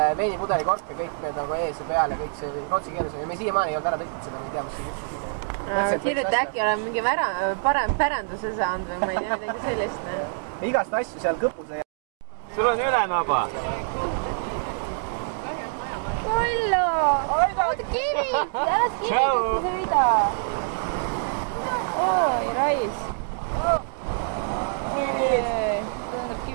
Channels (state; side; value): silent; left; digital silence